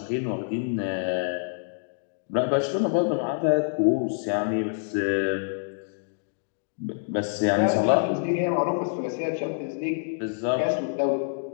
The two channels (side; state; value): right; silent; digital silence